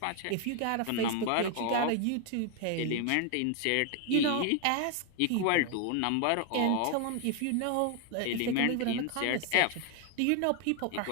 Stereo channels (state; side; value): different; both; correlation 0.01